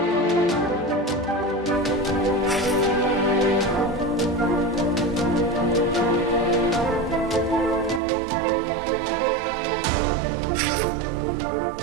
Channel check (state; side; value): drops out; left; at 8.0 s